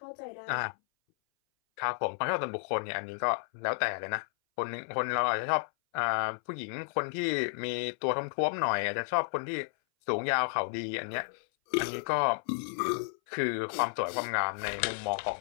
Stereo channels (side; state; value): right; silent; 56 dB below the other